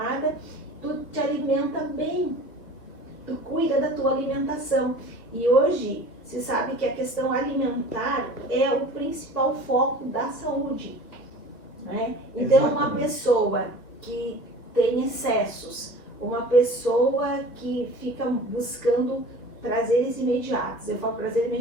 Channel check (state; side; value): late; right; 1.8 ms